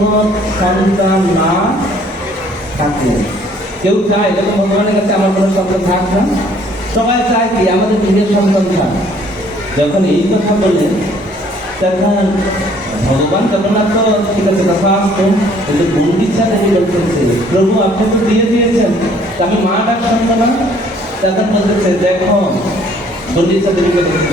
সন্তান না থাকে। কেউ চায় যখন ভগবানের কাছে আমার কোনো সন্তান থাক না, সবাই চায় কি আমাদের নিজের সন্তান থাক। যখন এই কথা বললেন, তখন ভগবান জগন্নাথ তো ঠিক আছে কথা আসতো, কিন্তু গুন্ডিচা দেবী বলতেছে, প্রভু আপনি তো দিয়ে দিয়েছেন, আমি মা ডাক শুনবো না? তখন বলতেছে, দেখো গুন্ডিচা দেবীকে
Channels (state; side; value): normal; both; correlation 0.59